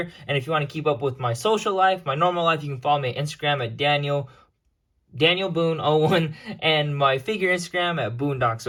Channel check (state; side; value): identical; both; correlation 1.00